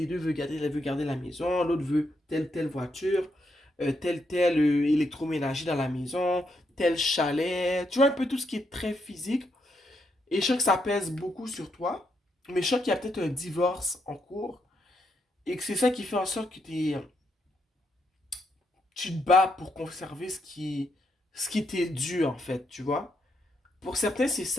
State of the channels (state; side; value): normal; both; correlation 0.79